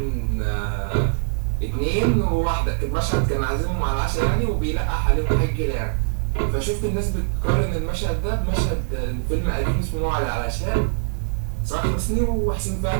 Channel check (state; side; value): silent; left; digital silence